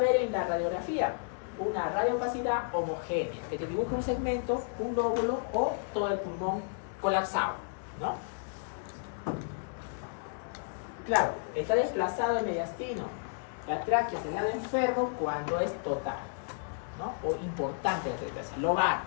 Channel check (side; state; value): right; silent; digital silence